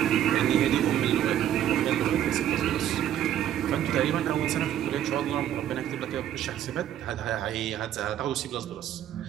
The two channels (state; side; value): quieter; left; 11.1 dB